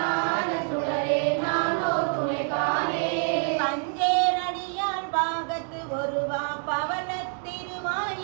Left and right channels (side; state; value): left; silent; 56 dB below the other